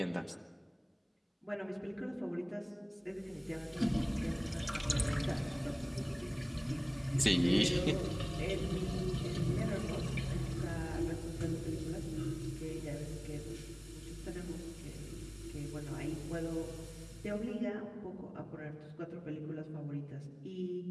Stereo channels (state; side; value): identical; both; correlation 1.00